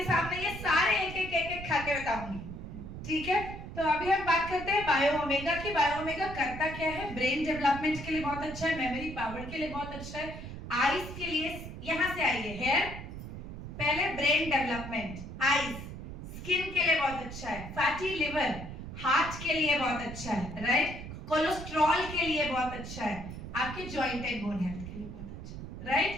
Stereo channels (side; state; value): right; noise; rumble, 9 dB below the sound